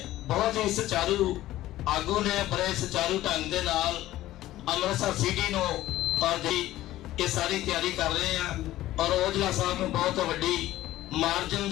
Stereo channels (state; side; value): quieter; right; 15.1 dB